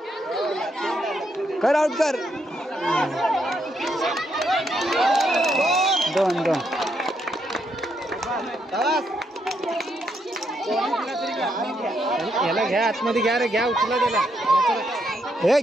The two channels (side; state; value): both; normal; correlation 0.77